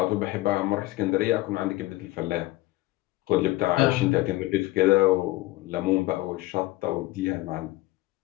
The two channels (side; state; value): right; quieter; 18.7 dB